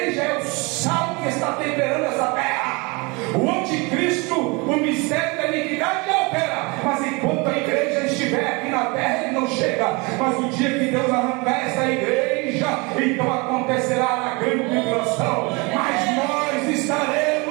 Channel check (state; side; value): quieter; left; 27.6 dB